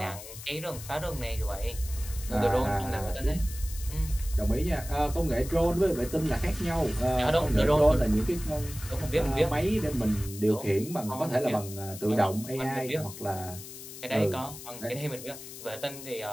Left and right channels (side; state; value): left; noise; hiss, 13 dB below the sound